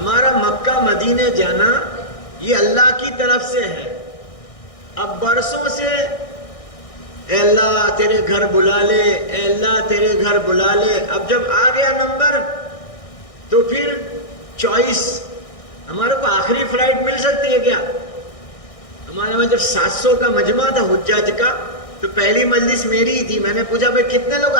مکہ مدینے جانا یہ اللہ کی طرف سے ہے. اب برسوں سے اے اللہ تیرے گھر بلا لے، اے اللہ تیرے گھر بلا لے. اب جب آ گیا نمبر تو پھر چوائس. ہمارے کو آخری فلائٹ مل سکتی ہے کیا؟ ہمارے میں جب 700 کا مجمع تھا حجاج کا تو پہلی مجلس میری ہی تھی. میں نے پوچھا بھائی کتنے لوگ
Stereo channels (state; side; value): late; right; 1.6 ms